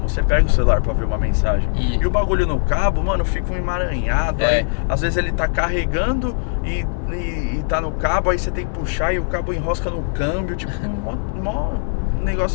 Você pega o celular pra ver uma mensagem. E o bagulho no cabo, mano, fica um emaranhado. Aí, às vezes ele tá carregando e tá no cabo, aí você tem que puxar e o cabo enrosca no câmbio. Tipo, mó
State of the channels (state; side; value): silent; right; digital silence